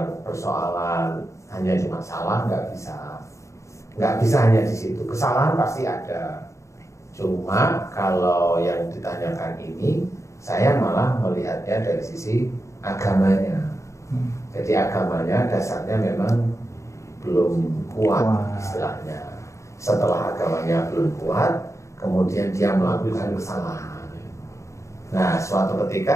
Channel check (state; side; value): late; right; 0.14 ms